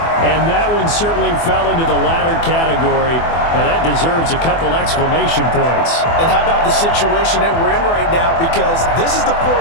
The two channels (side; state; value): right; late; 24 ms